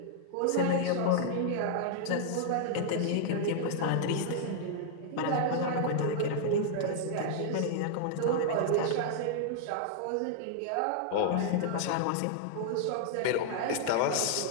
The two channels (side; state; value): both; different; correlation -0.01